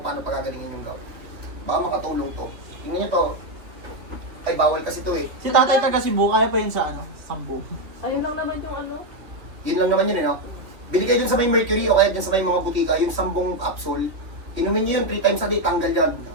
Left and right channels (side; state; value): left; late; 2.8 ms